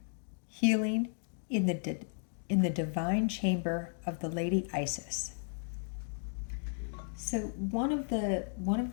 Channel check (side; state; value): right; silent; 55 dB below the other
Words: Healing in the divine chamber of the Lady Isis. So one of